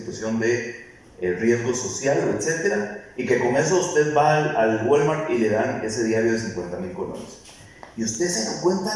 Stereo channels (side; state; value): both; identical; correlation 1.00